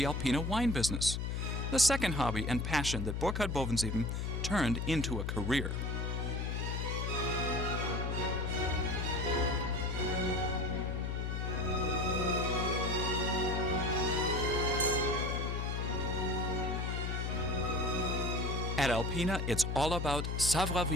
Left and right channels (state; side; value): noise; left; hum, 1 dB below the sound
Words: Alpina wine business, the second hobby and passion that Burkhard Bovensieben turned into a career. At Alpina, it's all about